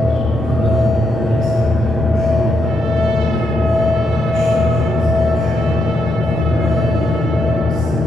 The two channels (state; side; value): normal; both; correlation 0.80